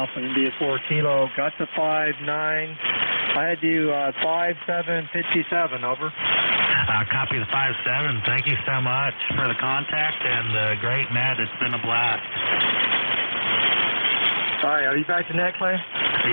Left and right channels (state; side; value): inverted; both; correlation -1.00